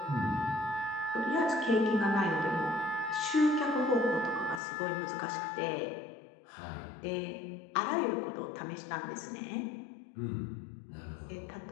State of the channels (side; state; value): right; drops out; at 4.6 s